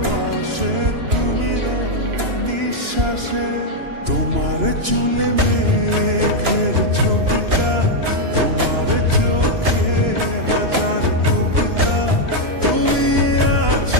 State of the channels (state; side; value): late; left; 2.9 ms